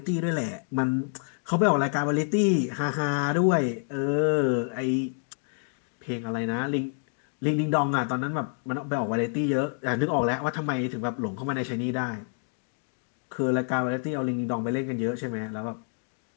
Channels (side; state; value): right; silent; 59 dB below the other